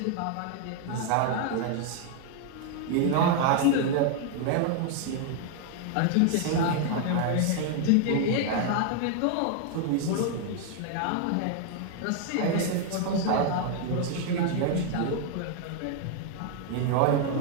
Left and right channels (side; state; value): both; different; correlation 0.00